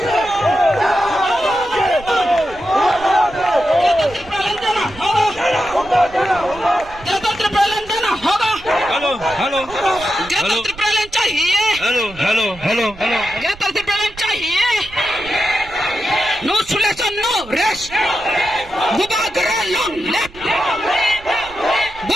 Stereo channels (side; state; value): right; noise; rumble, 19 dB below the sound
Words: Greta Thunberg land देना होगा. Hello hello Greta Thunberg land चाहिए. Hello hello hello hello Greta Thunberg land चाहिए. No solution, no rest. Bubagra long left.